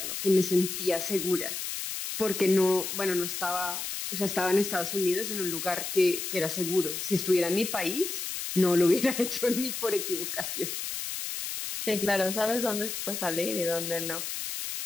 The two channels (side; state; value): left; noise; hiss, 5 dB below the sound